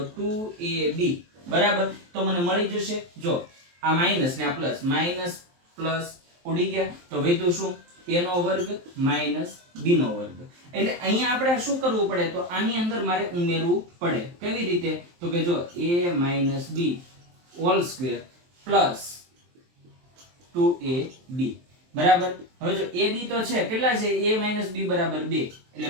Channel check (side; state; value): left; late; 23 ms